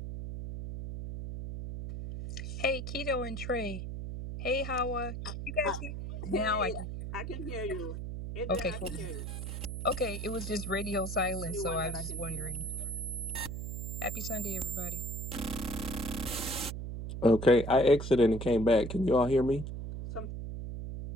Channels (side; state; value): right; noise; hum, 6 dB below the sound